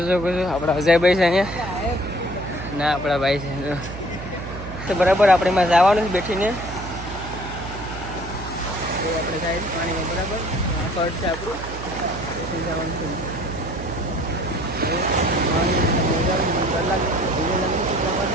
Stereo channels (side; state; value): right; noise; hum, 11 dB below the sound